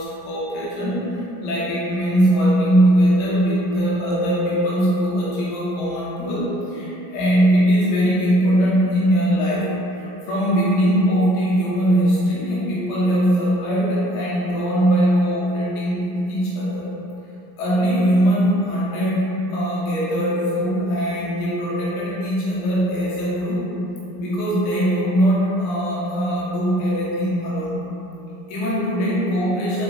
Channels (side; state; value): right; late; 17 ms